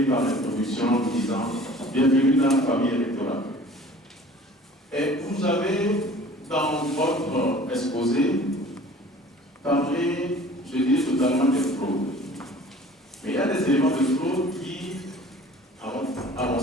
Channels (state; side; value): normal; both; correlation 0.47